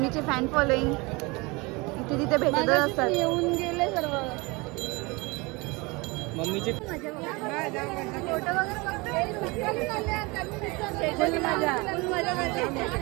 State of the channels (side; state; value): left; quieter; 25.9 dB